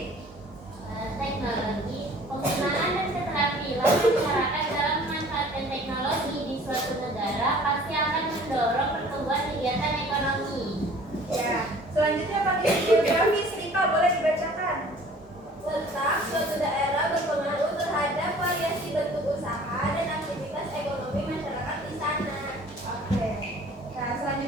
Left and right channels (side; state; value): both; normal; correlation 0.50